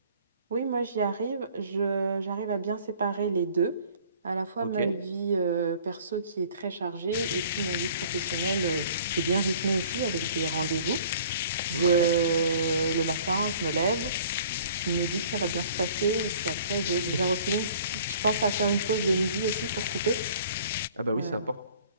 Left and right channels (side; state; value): both; inverted; correlation -0.52